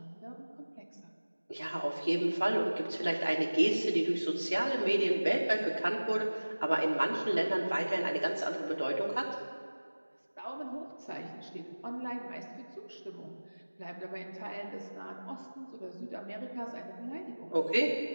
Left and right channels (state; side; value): inverted; both; correlation -1.00